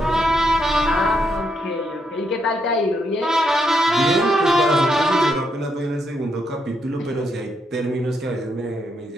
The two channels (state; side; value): normal; both; correlation 0.78